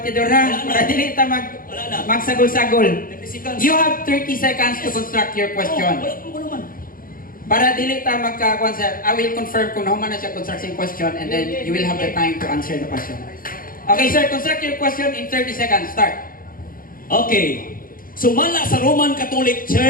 ha. Para dili ta magsagol-sagol. You have 30 seconds to construct your question. Para dili ta magka-answer, I will confirm kung naman na siya construction question and then you will have the time to answer the question. Okay sir, construct your question in 30 seconds. Start. Okay. Sumala sa Roman Catholic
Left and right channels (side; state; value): right; late; 0.41 ms